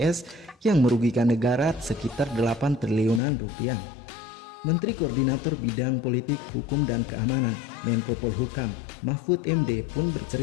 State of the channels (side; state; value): right; drops out; at 3.2 s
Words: yang merugikan negara sekitar 8 triliunan rupiah. Menteri Koordinator Bidang Politik, Hukum, dan Keamanan Menko Polhukam Mahfud MD pun